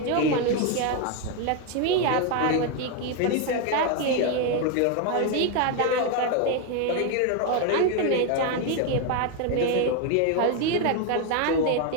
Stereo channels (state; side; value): different; both; correlation 0.01